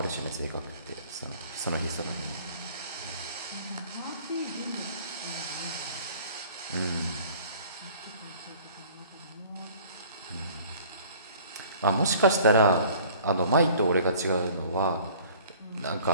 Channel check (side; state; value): both; inverted; correlation -0.50